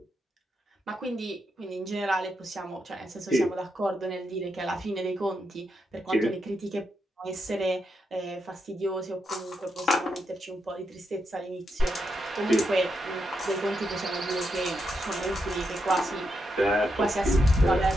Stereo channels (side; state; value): both; normal; correlation 0.83